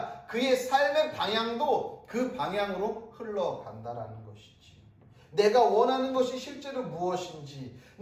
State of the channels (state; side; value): identical; both; correlation 1.00